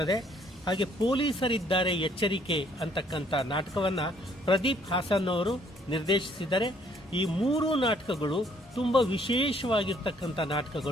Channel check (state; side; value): normal; both; correlation 0.64